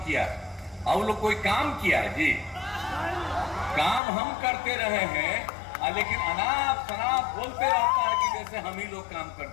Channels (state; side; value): drops out; right; at 4.0 s